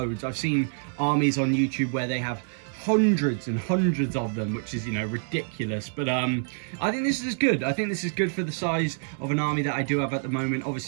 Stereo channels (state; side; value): silent; left; 60 dB below the other